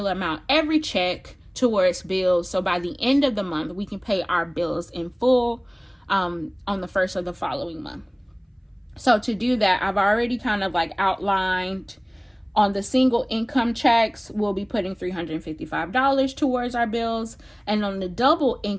amount every check towards bills. So by the end of the month, we can pay our bills in full on the first of the following month. So to do that, I've already kind of like outlined on the single income checks, we'll be putting $355 towards our bills. And on the double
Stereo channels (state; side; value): identical; both; correlation 1.00